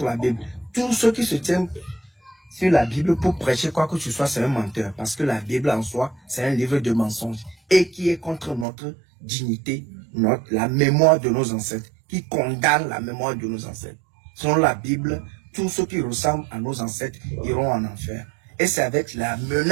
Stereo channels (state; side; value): drops out; left; at 8.7 s